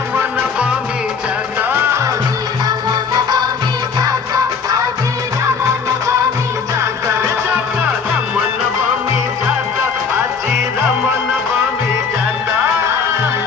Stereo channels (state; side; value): quieter; right; 5.7 dB